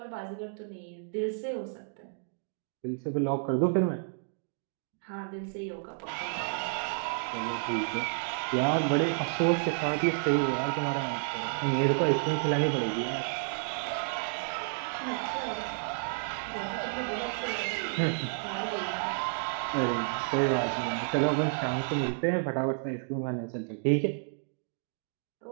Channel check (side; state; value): left; silent; digital silence